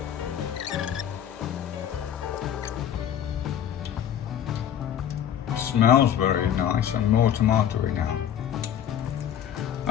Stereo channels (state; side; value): quieter; right; 9.8 dB